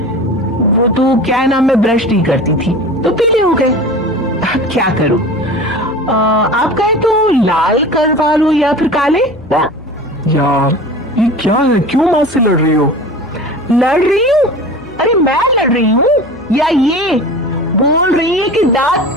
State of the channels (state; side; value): noise; left; hum, 22 dB below the sound